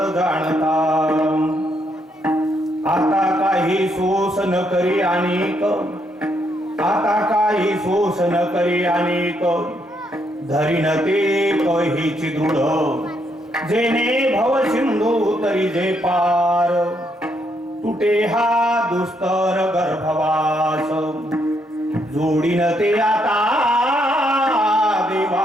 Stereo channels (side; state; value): both; normal; correlation 0.75